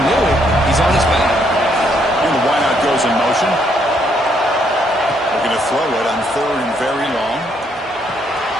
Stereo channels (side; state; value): both; normal; correlation 0.72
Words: knew it, he's on his back. And the wideout goes in motion. Looking to throw it on third and very long.